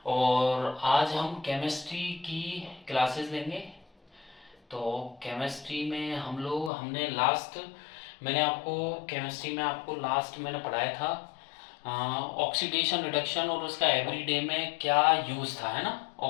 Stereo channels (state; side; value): drops out; right; at 6.7 s